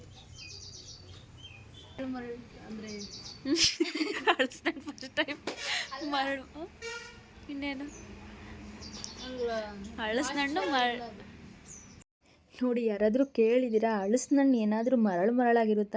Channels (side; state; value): both; identical; correlation 1.00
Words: ಫಸ್ಟ್ ಟೈಮ್ ಮರಳು, ಇನ್ನೇನು ಹಳಸಿನಣ್ಣು ನೋಡಿ. ಯಾರಾದರೂ ಕೇಳಿದ್ದೀರಾ ಹಣ್ಣು ಏನಾದರೂ